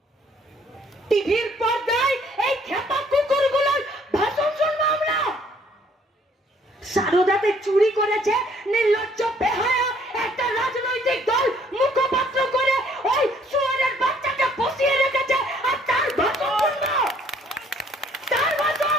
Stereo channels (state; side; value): normal; both; correlation 0.62